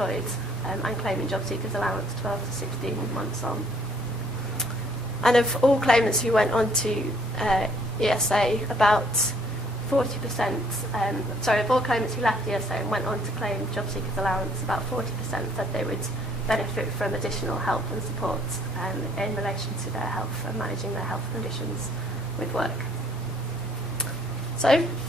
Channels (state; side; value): normal; both; correlation 0.62